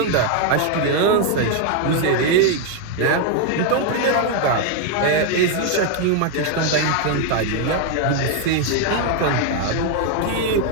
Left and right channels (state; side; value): different; both; correlation 0.01